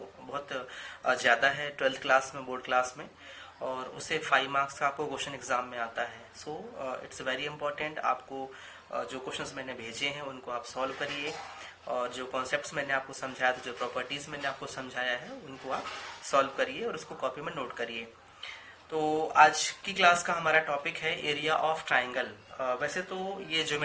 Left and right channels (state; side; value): identical; both; correlation 1.00